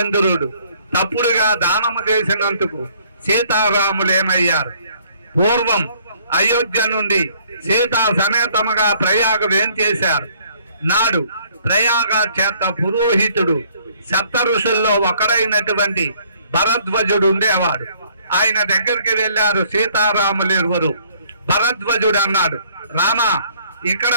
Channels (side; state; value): both; inverted; correlation -0.62